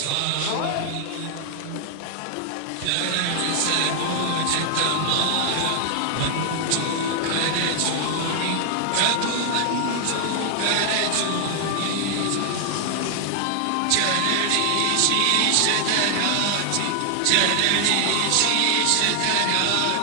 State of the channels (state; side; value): different; both; correlation 0.00